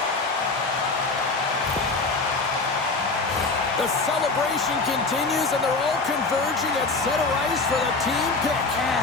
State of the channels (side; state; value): right; quieter; 3.8 dB